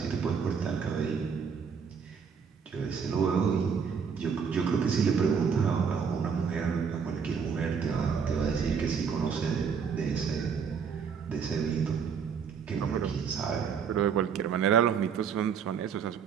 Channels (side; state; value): left; quieter; 6.5 dB